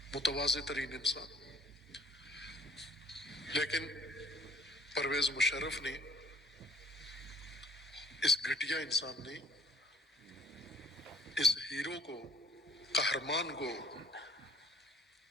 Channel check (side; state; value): both; normal; correlation 0.56